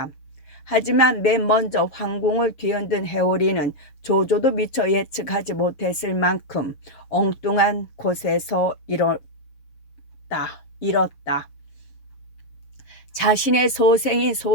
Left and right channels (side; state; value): right; late; 6.8 ms